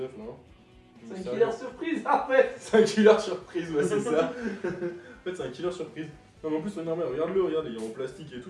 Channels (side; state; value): both; identical; correlation 1.00